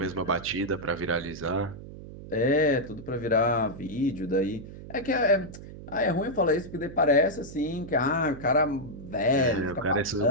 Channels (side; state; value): right; noise; hum, 14 dB below the sound